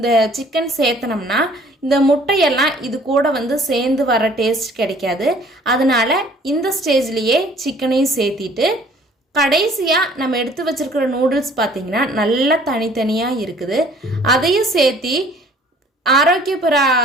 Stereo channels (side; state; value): both; normal; correlation 0.55